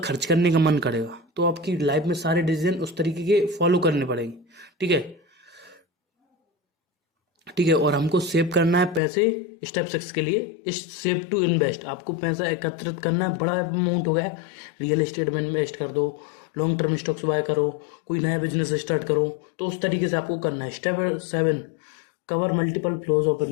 खर्च करने का मन करेगा, तो आपकी लाइफ में सारे डिसीजन उस तरीके के फॉलो करने पड़ेंगे। ठीक है, ठीक है, और हमको सेव करना है पैसे। स्टेप 6 के लिए इस सेव टू इन्वेस्ट, आपको पैसा एकत्रित करना है। बड़ा अमाउंट हो गया, रियल एस्टेट में इन्वेस्ट कर दो, लॉन्ग टर्म स्टॉक्स बाय करो, कोई नया बिजनेस स्टार्ट करो, तो उस तरीके से आपको करना है। Step 7 cover multiple flows of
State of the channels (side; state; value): right; drops out; at 9.0 s